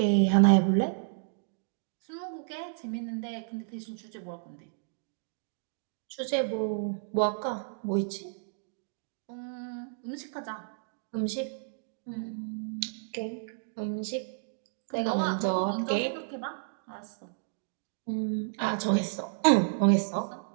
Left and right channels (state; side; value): silent; left; digital silence